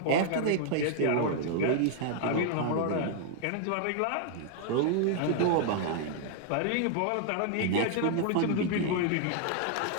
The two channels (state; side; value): different; both; correlation 0.00